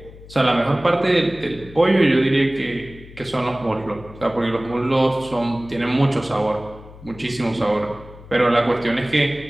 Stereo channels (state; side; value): noise; left; hum, 18 dB below the sound